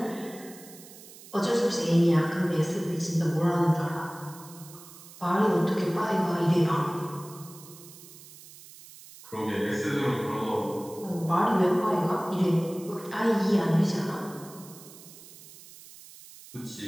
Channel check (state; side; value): noise; right; hiss, 19 dB below the sound